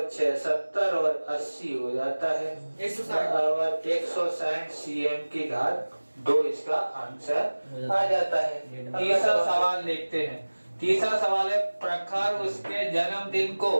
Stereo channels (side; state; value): both; inverted; correlation -1.00